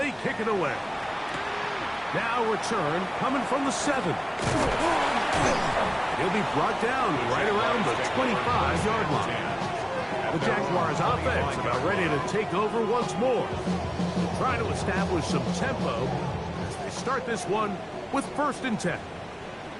kick it away. Now return coming from the 7. He'll be brought down right around the 25-yard line. The Jaguars offense about ready to take over once more. Trying to establish some tempo as they start this one with 1st and 10.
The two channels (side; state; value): both; identical; correlation 1.00